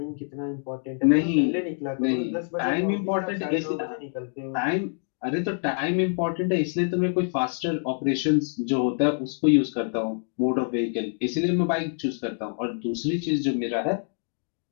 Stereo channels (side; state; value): right; silent; 61 dB below the other